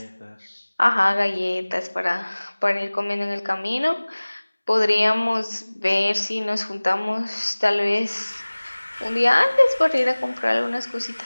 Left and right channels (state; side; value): inverted; both; correlation -1.00